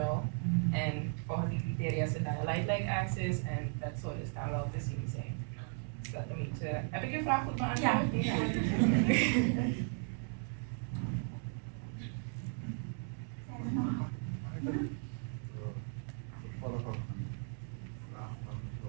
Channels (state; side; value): silent; left; 54 dB below the other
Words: En volgens die criteria is het dan een light-like axis en dat zou dus dan wel te zien zijn. Dat een beetje... Heb ik je vraag goed beantwoord? Ja.